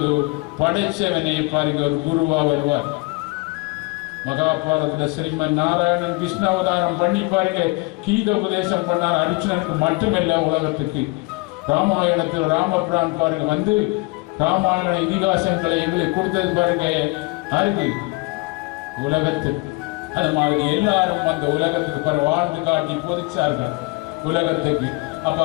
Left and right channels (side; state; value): right; quieter; 25.9 dB